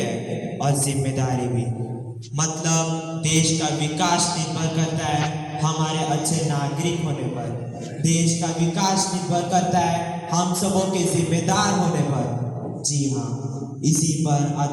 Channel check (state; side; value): identical; both; correlation 1.00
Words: और जिम्मेदारी भी। मतलब देश का विकास निर्भर करता है हमारे अच्छे नागरिक होने पर। देश का विकास निर्भर करता है हम सबों के जिम्मेदार होने पर। जी हाँ, इसी पर